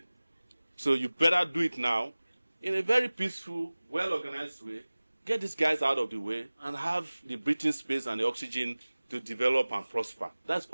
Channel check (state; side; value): inverted; both; correlation -0.99